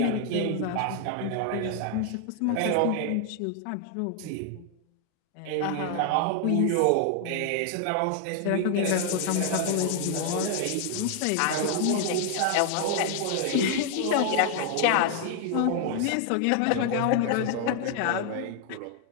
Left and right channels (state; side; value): different; both; correlation 0.00